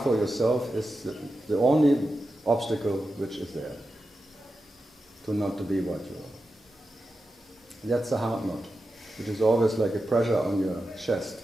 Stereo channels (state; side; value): normal; both; correlation 0.91